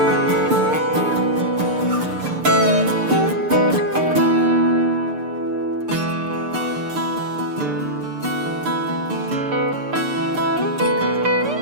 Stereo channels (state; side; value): late; left; 6.7 ms